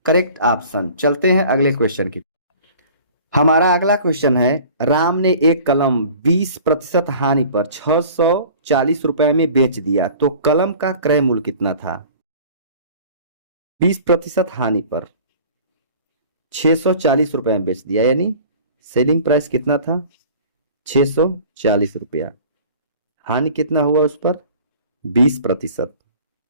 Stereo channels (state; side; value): inverted; both; correlation -0.46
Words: करेक्ट ऑप्शन। चलते हैं अगले क्वेश्चन की। हमारा अगला क्वेश्चन है, राम ने एक कलम 20% हानि पर 640 रुपए में बेच दिया, तो कलम का क्रय मूल्य कितना था। 20% हानि पर 640 रुपए में बेच दिया, यानी सेलिंग प्राइस कितना था 640 रुपया, हानि कितना हुआ उस पर 20%,